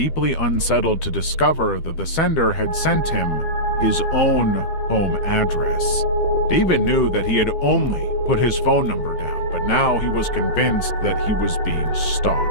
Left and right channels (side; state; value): right; late; 12 ms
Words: unsettled to discover that the sender had sent him his own home address. David knew that he had only put his phone number down, but now he was convinced that he was being